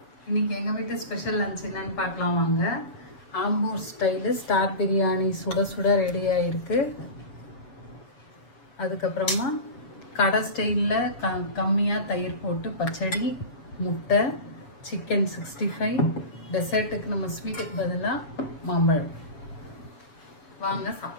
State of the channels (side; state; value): right; late; 7.2 ms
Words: இன்னைக்கு எங்க வீட்டு ஸ்பெஷல் லஞ்ச் என்னன்னு பார்க்கலாம் வாங்க. ஆம்பூர் ஸ்டைல் ஸ்டார் பிரியாணி சுட சுட ரெடி ஆயிருக்கு. அதுக்கப்புறமா கடை ஸ்டைலில் கம்மியா தயிர் போட்டு பச்சடி, முட்டை, சிக்கன் 65. டெசர்ட்டுக்கு நம்ம ஸ்வீட்டுக்கு பதிலாக மாம்பழம். வாங்க